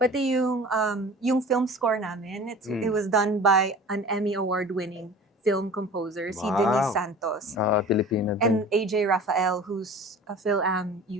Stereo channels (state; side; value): normal; both; correlation 0.41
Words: Pati yung film score namin, it was done by an Emmy Award-winning film composer, si Denise Santos. Pilipino din. And AJ Rafael, who's a Phil-Am